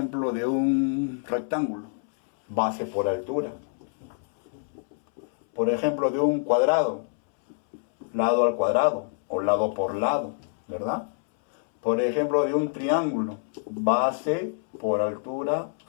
de un rectángulo, base por altura. Por ejemplo, de un cuadrado, lado al cuadrado o lado por lado, ¿verdad? Por ejemplo, de un triángulo, base por altura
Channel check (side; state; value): right; silent; 61 dB below the other